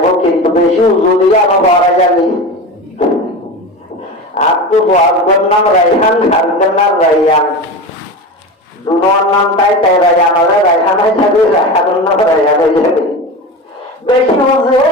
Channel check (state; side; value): normal; both; correlation 0.26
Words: वो किंतु बेशी उजुलिया में बारा जानी आपको बहुत नाम रैहान हरदन नाम रैहान दोनों नाम ताई ताई रैहान वाले रैहान है जब रैहान नाम रैहान हो जाए बेशी